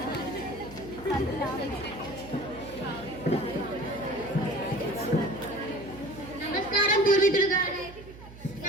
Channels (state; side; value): noise; right; hum, 17 dB below the sound